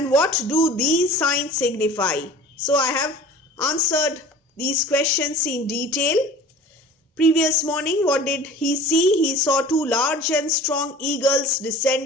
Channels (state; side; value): normal; both; correlation 0.42